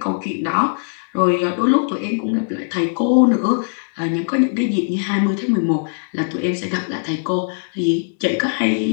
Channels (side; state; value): right; silent; digital silence